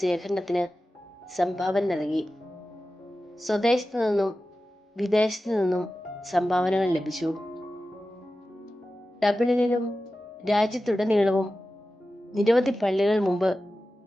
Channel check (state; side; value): normal; both; correlation 0.94